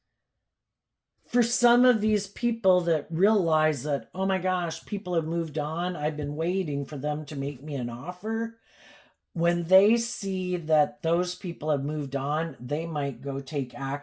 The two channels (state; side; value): identical; both; correlation 1.00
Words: For some of these people that realize that, oh my gosh, people have moved on, I've been waiting for them to make me an offer. When they see that those people have moved on, they might go take